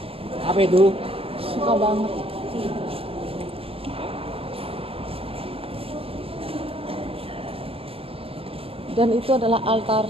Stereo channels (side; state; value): left; late; 0.28 ms